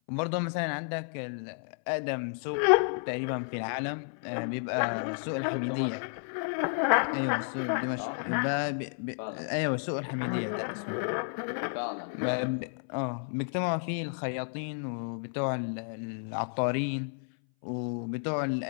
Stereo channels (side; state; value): right; silent; 57 dB below the other